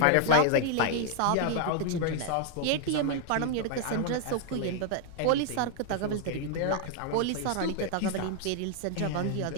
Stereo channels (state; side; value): different; both; correlation 0.00